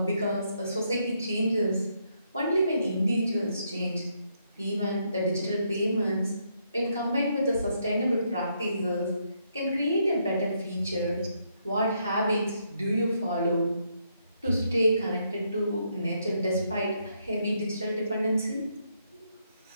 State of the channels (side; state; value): both; inverted; correlation -0.76